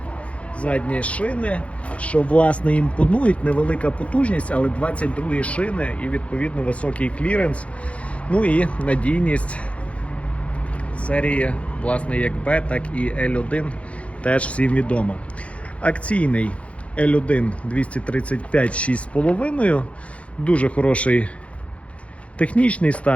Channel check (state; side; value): late; right; 0.063 ms